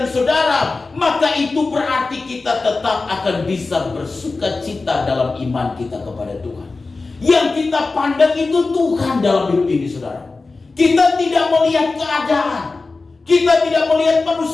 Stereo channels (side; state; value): right; quieter; 3.8 dB